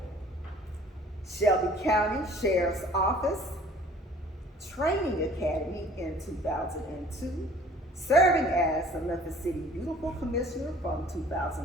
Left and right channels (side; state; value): both; normal; correlation 0.52